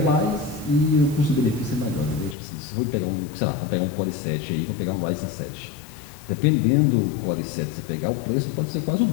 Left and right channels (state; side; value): drops out; right; at 2.4 s